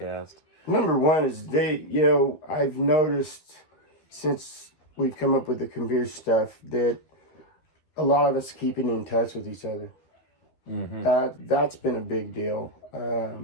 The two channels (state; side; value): late; right; 12 ms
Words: Number one is I've noticed since we've come up with the computer stuff that a lot of us keeping in touch with each other. That's been a big deal.